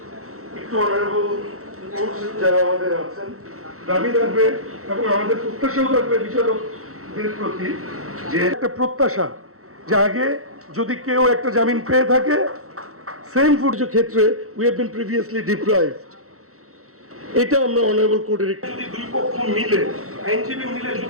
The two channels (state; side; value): late; left; 0.64 ms